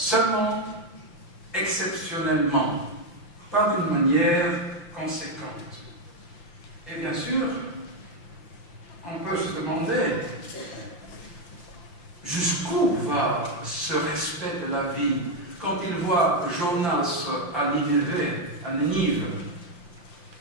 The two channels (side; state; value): right; late; 5.8 ms